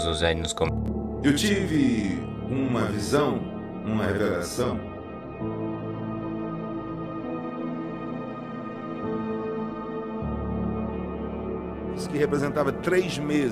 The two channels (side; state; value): both; identical; correlation 1.00